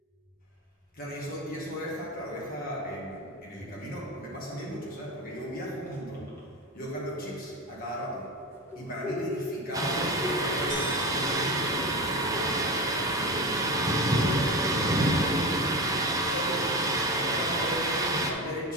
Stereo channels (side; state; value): both; normal; correlation 0.22